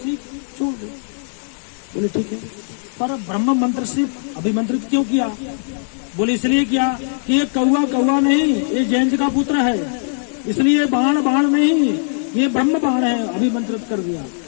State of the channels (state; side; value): silent; right; digital silence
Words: छोड़ दो। बोले ठीक है, पर ब्रह्म मंत्र से अभिमंत्रित क्यों किया? बोले इसलिए किया कि ये कौवा कौवा नहीं, ये जयंत का पुत्र है, इसलिए बाण बाण नहीं, ये ब्रह्म बाण है, अभिमंत्रित कर दिया।